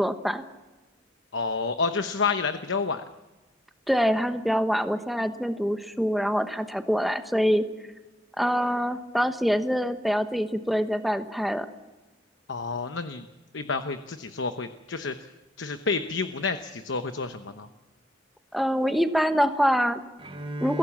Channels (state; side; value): normal; both; correlation 0.73